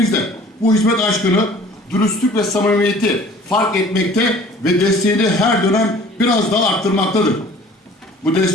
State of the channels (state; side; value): normal; both; correlation 0.49